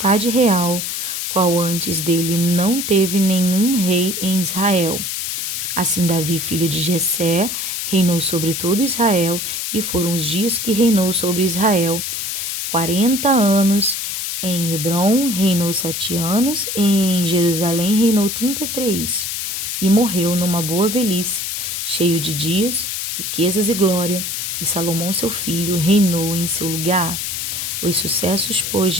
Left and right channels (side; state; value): left; noise; hiss, 3 dB below the sound